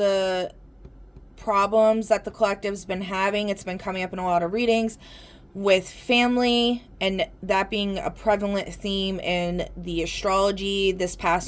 problems that the collective's been having, it's been coming up in a lot of readings with family, and that being a prevalent theme in the astrology this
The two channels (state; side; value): identical; both; correlation 1.00